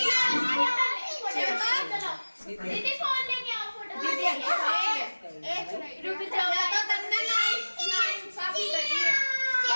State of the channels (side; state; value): both; inverted; correlation -1.00